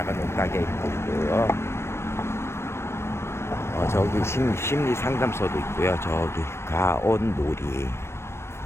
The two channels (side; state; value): right; late; 0.12 ms